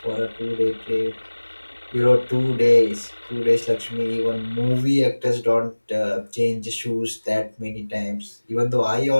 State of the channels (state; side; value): inverted; both; correlation -1.00